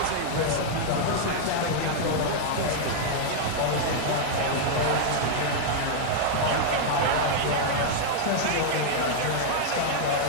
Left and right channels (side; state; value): both; different; correlation -0.01